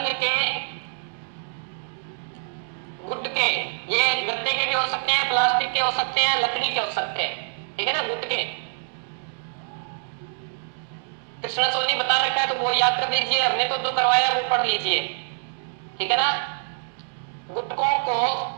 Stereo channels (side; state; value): left; silent; digital silence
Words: के गुटके, ये गत्ते के भी हो सकते हैं, प्लास्टिक के हो सकते हैं, लकड़ी के हो सकते हैं, ठीक है ना, गुटके। कृष्णा सोनी बता रखा है तो वो याद कर लीजिए, हमने तो जो करवाया वो पढ़ लीजिए, ठीक है ना। गुटकों को